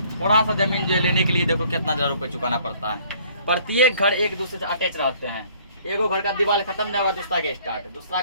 थोड़ा सा जमीन जो लेने के लिए देखो कितना हजार रुपये चुकाना पड़ता है। प्रत्येक घर एक दूसरे से अटैच रहते हैं, एगो घर का दीवार खत्म नहीं हुआ दूसरा के स्टार्ट, दूसरा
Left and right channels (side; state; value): both; inverted; correlation -0.58